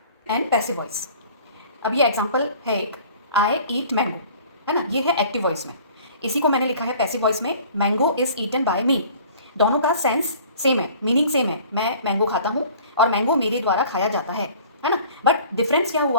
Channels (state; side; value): inverted; both; correlation -0.49